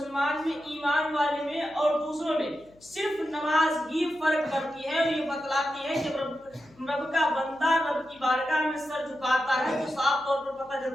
میں، ایمان والے میں اور دوسروں میں صرف نماز ہی فرق کرتی ہے، اور یہ بتلاتی ہے کہ رب کا بندہ رب کی بارگاہ میں سر جھکاتا ہے تو صاف طور پر پتہ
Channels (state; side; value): noise; left; hum, 28 dB below the sound